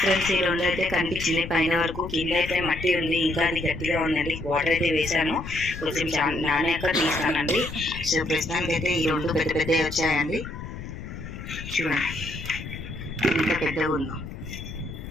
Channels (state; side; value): noise; left; rumble, 10 dB below the sound